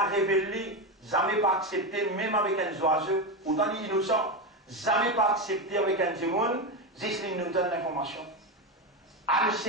révèle, jamais pas accepté, même avec un oiseau, autant innocent, jamais pas accepté avec un démon. Juste, il nous donne l'information. elle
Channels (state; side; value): normal; both; correlation 0.15